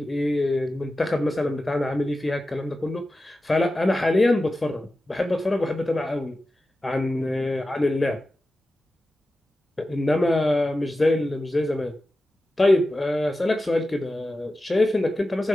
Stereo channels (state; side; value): normal; both; correlation 0.94